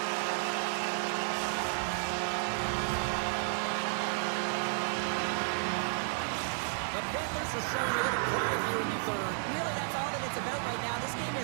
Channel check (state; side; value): silent; left; 56 dB below the other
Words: The Panthers are showing a little pride here in the third. Really, that's all that it's about right now. This game